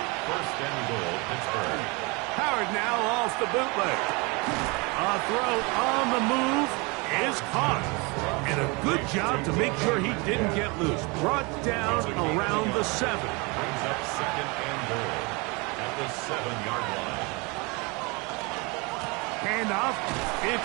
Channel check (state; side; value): quieter; left; 28.2 dB